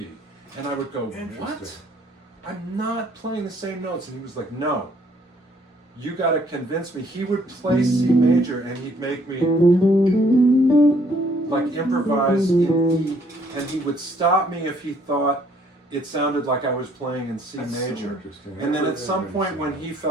And I would go, what? I'm not playing the same notes. And he was like, no. You got to convince me. He would play C major and he'd make me like improvise in E, and he would stop me if he thought it sounded like I was playing in C major. So and then at some point when he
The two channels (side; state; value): both; normal; correlation 0.64